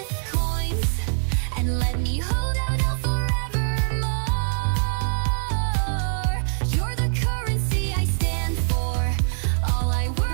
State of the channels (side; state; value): left; silent; 63 dB below the other